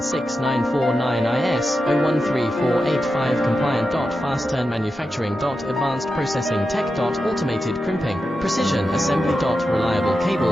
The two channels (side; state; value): both; normal; correlation 0.90